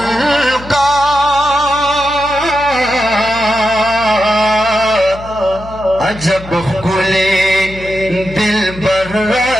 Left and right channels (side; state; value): left; noise; hum, 15 dB below the sound